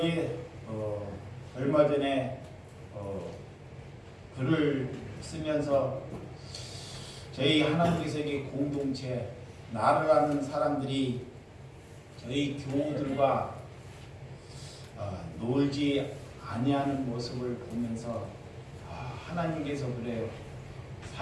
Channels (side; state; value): both; identical; correlation 1.00